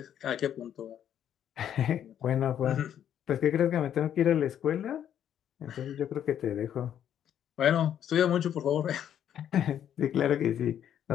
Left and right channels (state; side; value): quieter; right; 9.9 dB